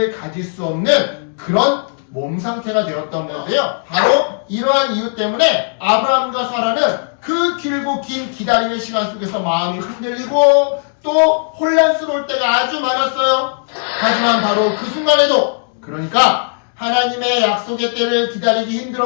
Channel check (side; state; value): right; silent; digital silence